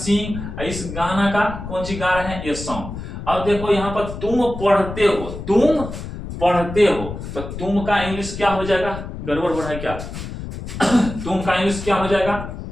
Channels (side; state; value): left; noise; rumble, 9 dB below the sound